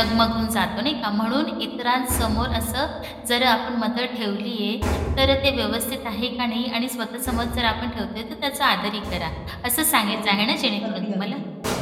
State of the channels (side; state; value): both; identical; correlation 1.00